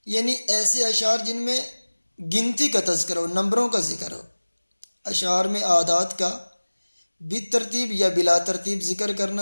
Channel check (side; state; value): both; inverted; correlation -1.00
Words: یعنی ایسے اشعار جن میں گنتی کا تذکر ہو، نمبروں کا ذکر ہو۔ اشعار میں اعداد کا بالترتیب یا بلا ترتیب ذکر